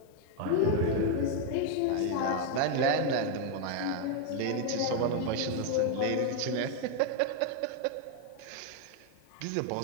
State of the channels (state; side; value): different; both; correlation 0.00